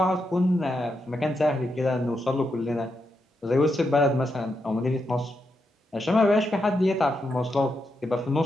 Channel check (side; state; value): both; normal; correlation 0.83